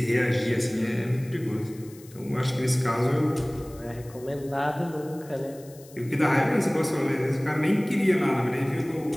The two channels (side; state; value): left; noise; hiss, 23 dB below the sound